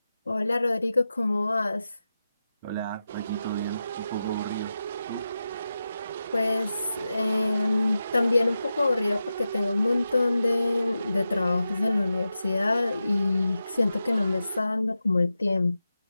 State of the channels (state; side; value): inverted; both; correlation -0.92